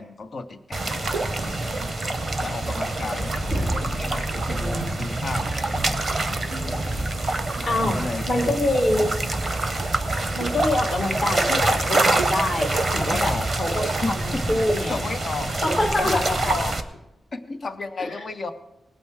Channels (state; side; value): normal; both; correlation 0.88